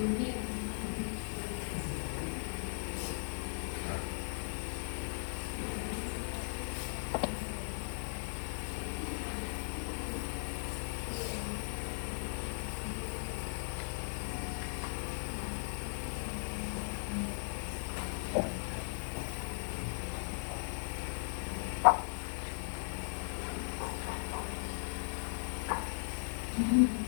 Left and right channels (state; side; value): silent; right; 52 dB below the other